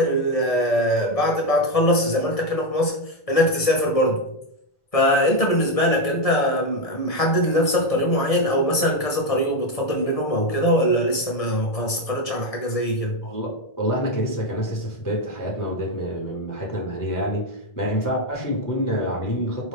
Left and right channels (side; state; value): right; late; 1.6 ms